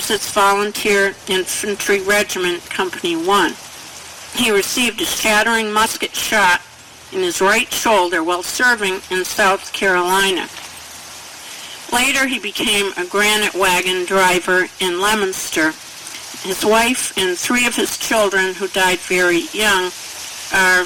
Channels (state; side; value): identical; both; correlation 1.00